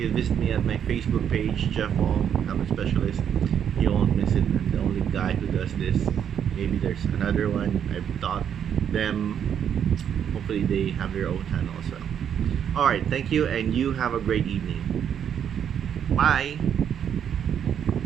visit me at my Facebook page, Jeff Hong, Helmet Specialist. You won't miss it. I'm the only guy who does this. Maybe there's another one. I've taught them. Hopefully they have their own channel as well. Alright, thank you, and you have a great evening. Bye!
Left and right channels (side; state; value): left; quieter; 8.7 dB